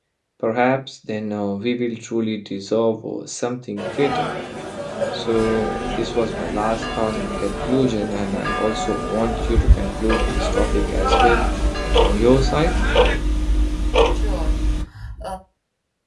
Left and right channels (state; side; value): identical; both; correlation 1.00